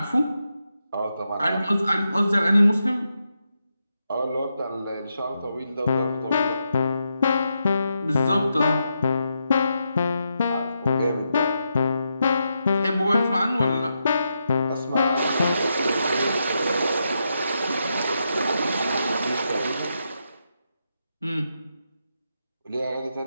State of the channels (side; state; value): both; inverted; correlation -0.84